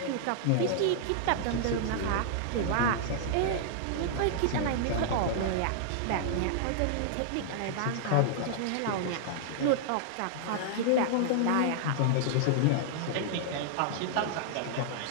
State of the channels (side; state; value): both; different; correlation -0.01